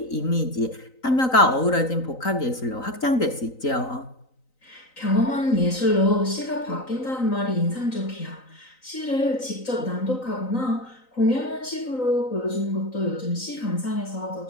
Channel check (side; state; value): right; late; 3.9 ms